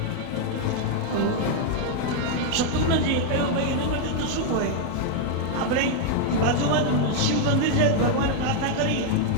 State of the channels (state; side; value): different; both; correlation 0.00